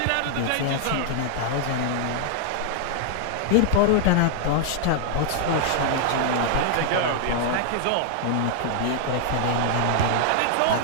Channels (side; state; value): both; different; correlation 0.00